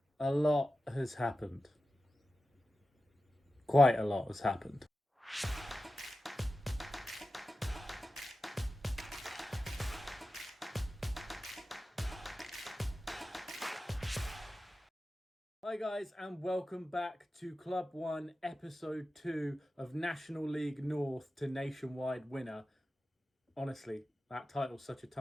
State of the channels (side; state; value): both; normal; correlation 0.93